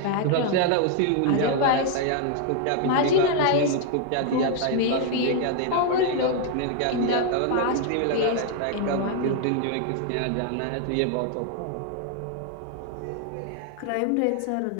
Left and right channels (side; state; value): both; different; correlation 0.00